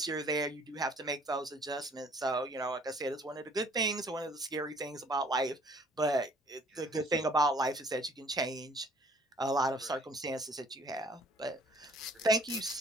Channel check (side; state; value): both; normal; correlation 0.56